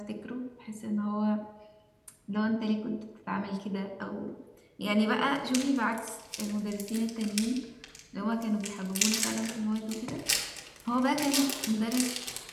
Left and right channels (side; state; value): both; identical; correlation 1.00